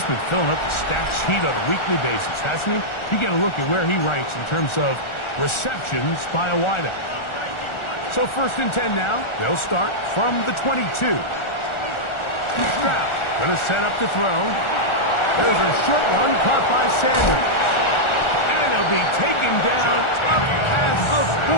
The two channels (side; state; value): right; late; 1.4 ms